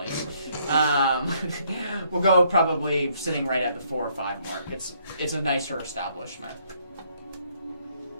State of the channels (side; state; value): both; inverted; correlation -0.68